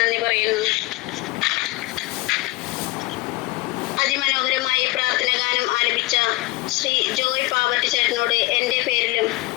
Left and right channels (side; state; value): right; quieter; 21.4 dB